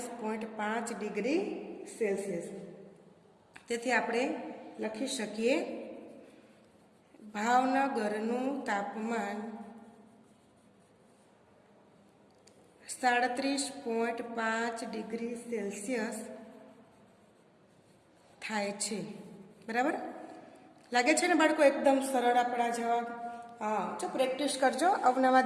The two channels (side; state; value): both; identical; correlation 1.00